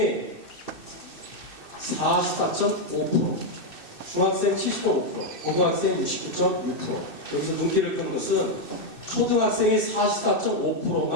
44.5%, 중학생 70.5%, 고등학생 69.6%. 여기서 눈길을 끄는 것은 초등학생이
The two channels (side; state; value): right; late; 2.6 ms